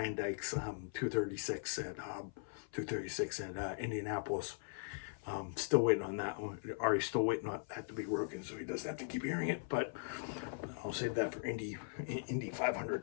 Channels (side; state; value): right; silent; 51 dB below the other